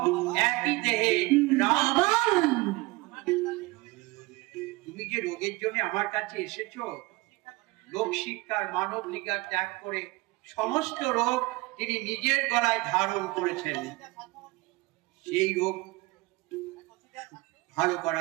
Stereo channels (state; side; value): quieter; left; 22.5 dB